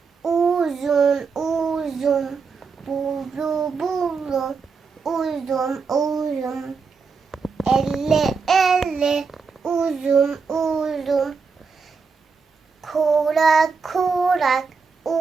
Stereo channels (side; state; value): left; quieter; 5.1 dB